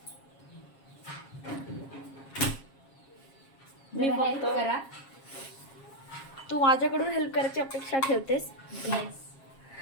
मी हेल्प फक्त करा. तू माझ्याकडून हेल्प करायची अपेक्षा ठेवतेस. येस.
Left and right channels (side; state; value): right; late; 7.4 ms